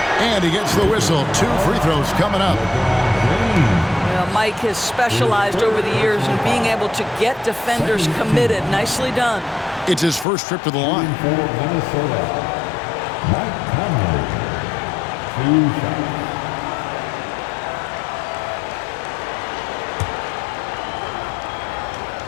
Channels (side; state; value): right; drops out; at 10.2 s